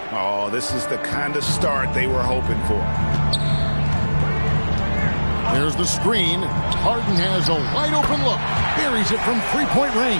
Oh, this is the kind of start they were hoping for. There's the screen. Harden has a wide open look. Buries it from 3-point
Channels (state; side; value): inverted; both; correlation -1.00